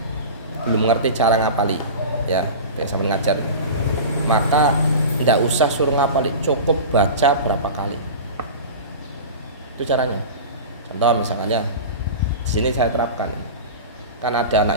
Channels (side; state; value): both; inverted; correlation -0.31